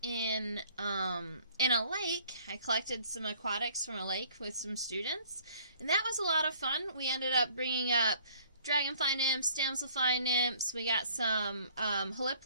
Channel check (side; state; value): both; inverted; correlation -0.57